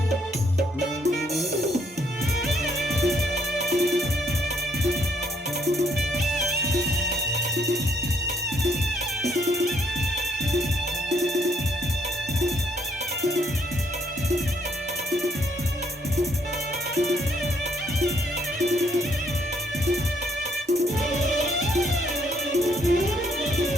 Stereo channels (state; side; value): normal; both; correlation 0.70